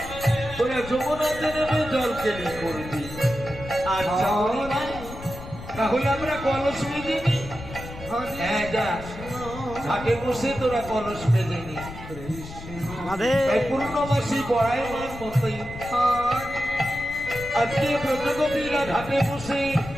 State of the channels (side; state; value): left; noise; rumble, 13 dB below the sound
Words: তোরা যমুনাতে নেমে জল কেলি করবি। আচ্ছা বুড়িমা, তাহলে আমরা কলস বেঁধে নি। হ্যাঁ, যা ঘাটে বসে তোরা কলস বেঁধে নি। তাই পূর্ণমাসী বড়াইমান মতোই আজকে ব্রতগোপীরা ঘাটে বসে